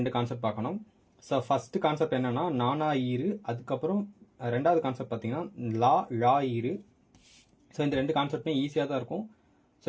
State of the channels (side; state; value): both; identical; correlation 1.00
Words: கான்செப்ட் பார்க்கணும். ஸோ ஃபர்ஸ்ட் கான்செப்ட் என்னன்னா நானா ஈரு, அதுக்கப்புறம் ரெண்டாவது கான்செப்ட் பார்த்தீங்கன்னா லா ஈரு. ஸோ இந்த 2 கான்செப்ட்மே ஈஸியாக தான் இருக்கும். ஸோ